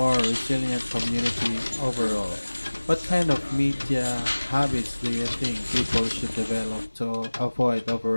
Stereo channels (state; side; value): inverted; both; correlation -1.00